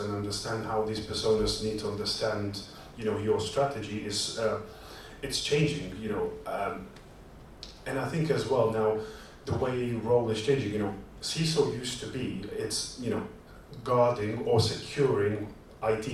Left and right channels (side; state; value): both; identical; correlation 1.00